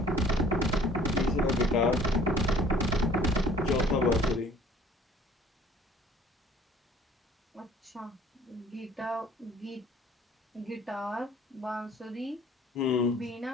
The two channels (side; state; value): both; normal; correlation 0.54